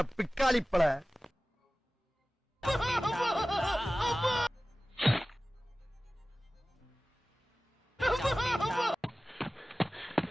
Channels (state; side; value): normal; both; correlation 0.97